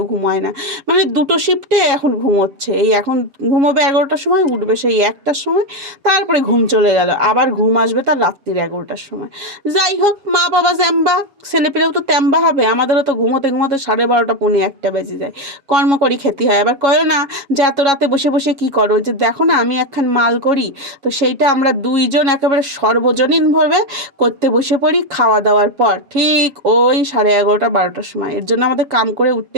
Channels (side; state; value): left; late; 7.2 ms